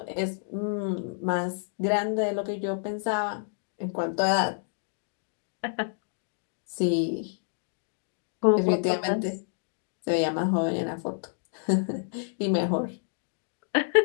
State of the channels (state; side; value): silent; right; digital silence